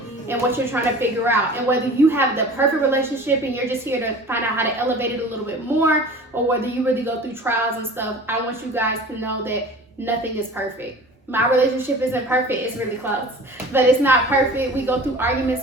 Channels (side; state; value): both; normal; correlation 0.41